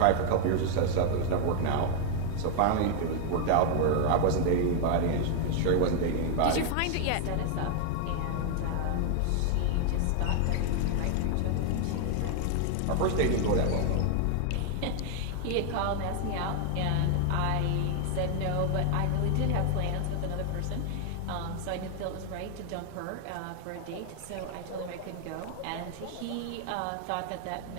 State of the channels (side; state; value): both; different; correlation 0.00